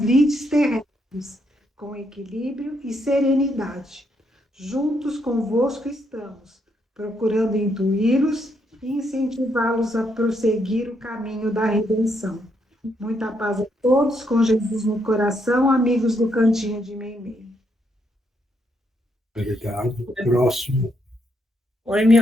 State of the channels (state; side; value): normal; both; correlation 0.76